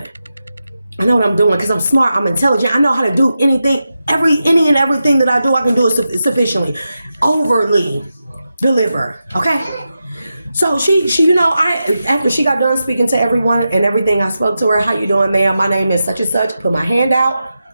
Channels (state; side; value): inverted; both; correlation -0.90